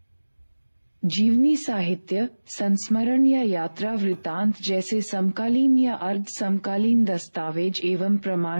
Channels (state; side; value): inverted; both; correlation -1.00